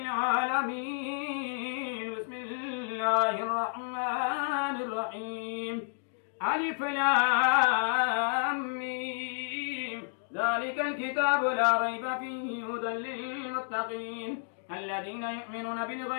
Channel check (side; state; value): right; silent; digital silence